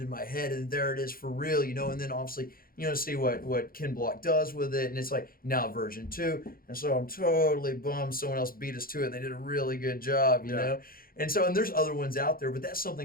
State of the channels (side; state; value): right; late; 0.42 ms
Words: in my head, and there it is for real, you know. And then obviously, you know, see what Ken Block does with it, and it's like now version 2. And so I'm totally bummed someone else beat us to it. They did a really good job, you know. And so, and there's other ones out there, but that's